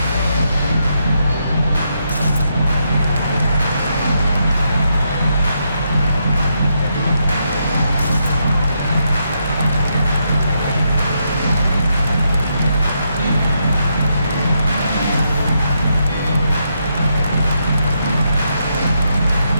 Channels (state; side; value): inverted; both; correlation -0.80